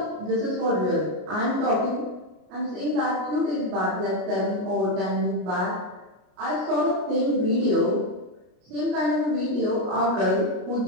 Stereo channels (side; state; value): left; late; 33 ms